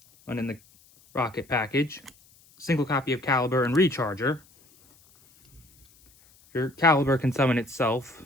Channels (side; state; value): left; noise; hiss, 29 dB below the sound